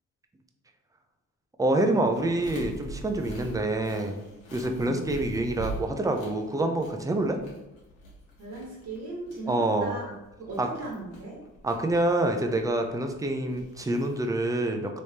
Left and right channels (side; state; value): both; normal; correlation 0.59